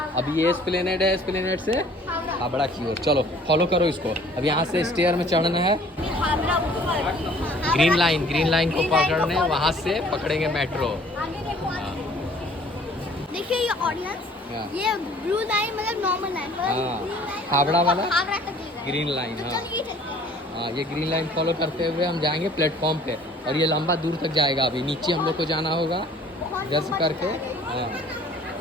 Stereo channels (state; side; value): normal; both; correlation 0.53